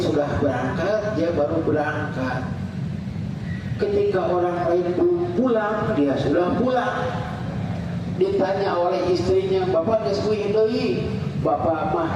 berangkat, dia baru berangkat. Ketika orang lain belum pulang, dia sudah pulang. Ditanya oleh istrinya, bapak geus kuih deui? Bapak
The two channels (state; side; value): identical; both; correlation 1.00